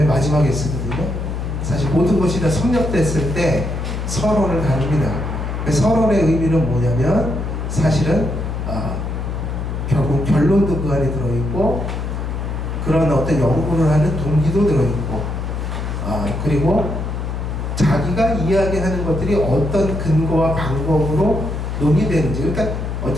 마지막에 쓰거든요. 사실 모든 것이 다 섭렵됐을 때 서론을 다룹니다. 서론의 의미는 뭐냐면 사실은 결국 결론도 그 안에 들어있고 그런 어떤 연구를 하는 동기도 들어있고 그리고 자기가 이야기하는 것들이 어떤 근거와 방법으로 논의되는지, 그러니까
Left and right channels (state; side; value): noise; left; hum, 4 dB below the sound